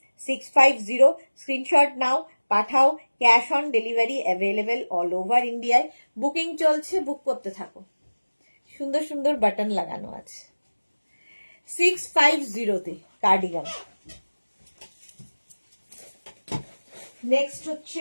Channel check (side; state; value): both; inverted; correlation -1.00